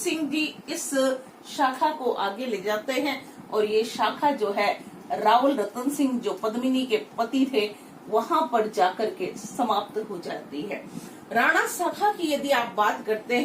जी इस शाखा को आगे ले जाते हैं और ये शाखा जो है रावल रतन सिंह जो पद्मिनी के पति थे वहां पर जाकर के समाप्त हो जाती है। राणा शाखा की यदि आप बात करते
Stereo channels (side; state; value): both; identical; correlation 1.00